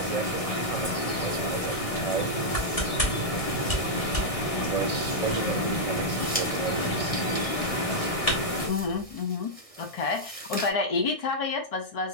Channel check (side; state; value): right; late; 1.6 ms